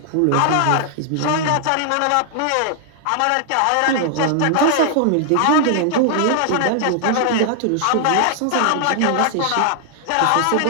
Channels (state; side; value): different; both; correlation 0.00